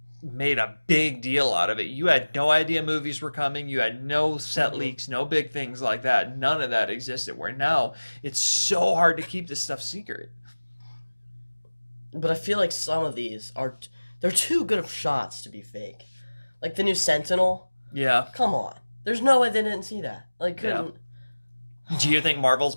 made a big deal out of it, you had no idea movies were coming. You had no set leaks, no big things like that. None of that existed. Where now it's so hard to keep this stuff secret. But I feel like some of these they're too good of shots to be fake. Like the new Sentinel. Yeah. Come on. There's no way they didn't see that. Couldn't. Yeah. Do you think Marvel's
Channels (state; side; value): inverted; both; correlation -1.00